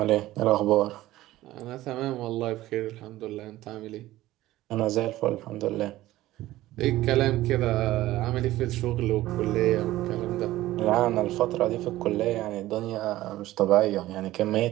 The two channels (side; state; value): left; quieter; 16.0 dB